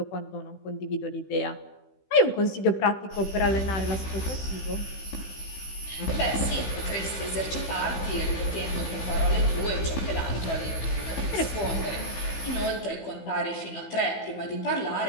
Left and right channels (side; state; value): right; late; 15 ms